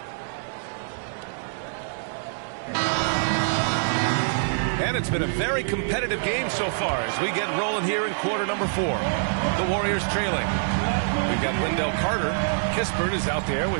And it's been a very competitive game so far as we get rolling here in quarter number 4. The Warriors trailing. We've got Wendell Carter. Kispert is out there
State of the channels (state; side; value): silent; left; digital silence